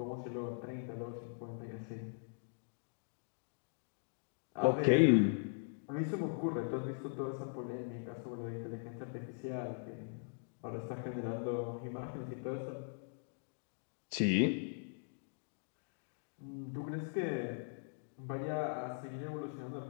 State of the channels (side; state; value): right; silent; digital silence